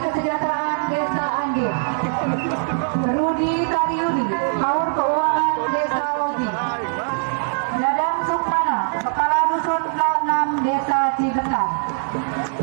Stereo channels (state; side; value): silent; left; digital silence